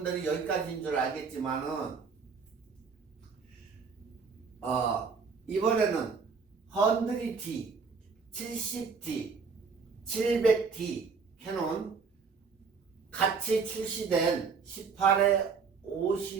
여기까지인 줄 알겠지만은 이번에는 100D, 70D, 700D 캐논 같이 출시된 18에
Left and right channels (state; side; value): quieter; left; 5.4 dB